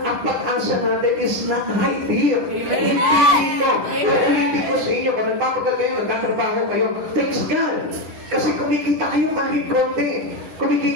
ang pag-asa natin is not right here. Hindi dito. Uulitin ko sa inyo, kung nagpapagal kayo, nagtatrabaho kayo, thanks God. Kasi kumikita kayo kahit konti.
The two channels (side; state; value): left; late; 9.6 ms